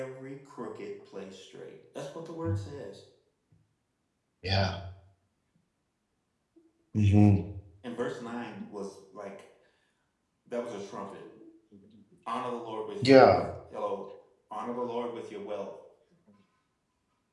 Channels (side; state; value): both; identical; correlation 1.00